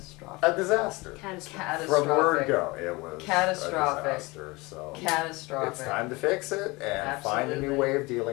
A disaster. Catastrophic. From word go, it was catastrophic. A disaster. So catastrophic. It's time to fix it and find a new way of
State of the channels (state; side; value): quieter; right; 23.9 dB